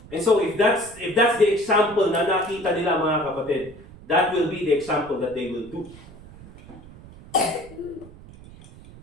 And so, if that's the example na nakita nila mga kapatid, that will be the example that they will do.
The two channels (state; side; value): noise; right; rumble, 19 dB below the sound